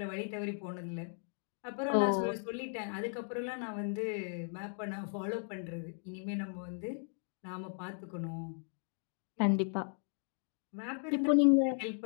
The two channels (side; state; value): right; silent; 53 dB below the other